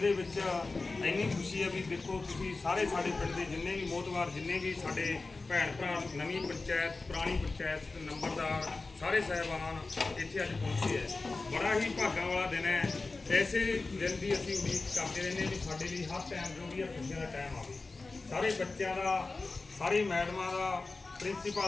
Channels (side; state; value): right; quieter; 3.6 dB